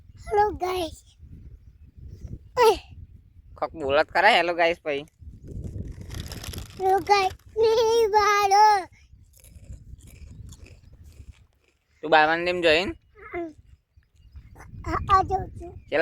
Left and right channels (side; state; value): both; identical; correlation 1.00